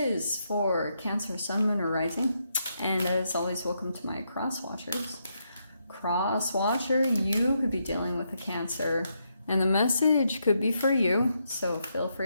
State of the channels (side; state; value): both; inverted; correlation -0.80